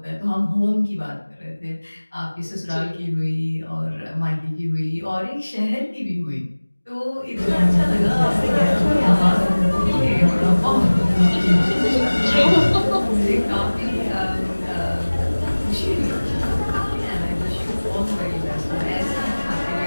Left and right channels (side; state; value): both; inverted; correlation -1.00